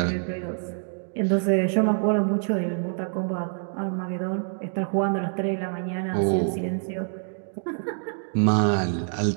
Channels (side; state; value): left; silent; 61 dB below the other